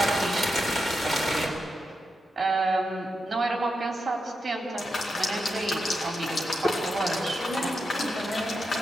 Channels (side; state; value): both; normal; correlation 0.86